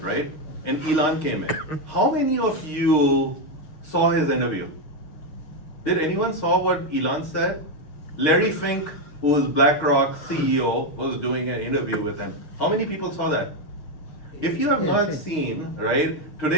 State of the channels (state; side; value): late; right; 6.5 ms